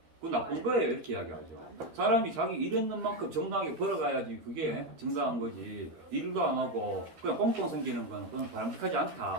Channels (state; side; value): late; left; 13 ms